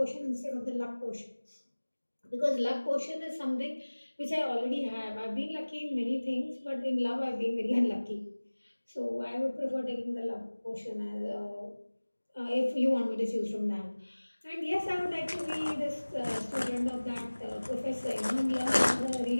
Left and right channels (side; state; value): both; inverted; correlation -1.00